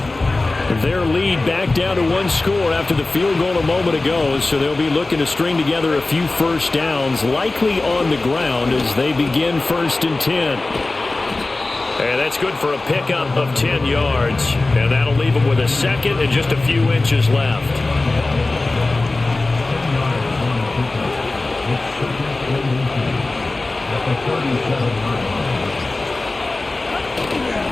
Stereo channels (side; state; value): right; quieter; 3.1 dB